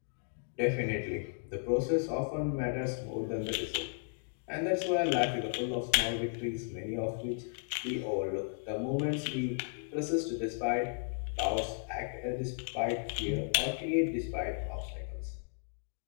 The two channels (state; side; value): silent; right; digital silence